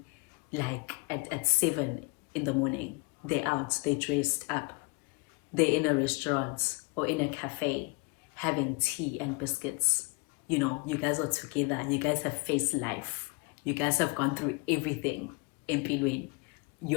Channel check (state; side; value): quieter; right; 28.9 dB